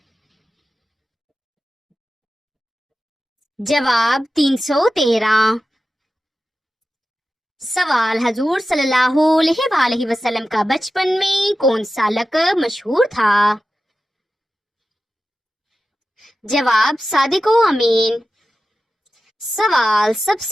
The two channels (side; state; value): both; normal; correlation 0.93